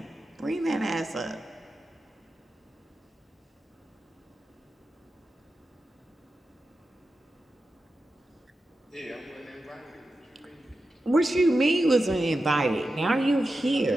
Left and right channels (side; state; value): both; normal; correlation 0.91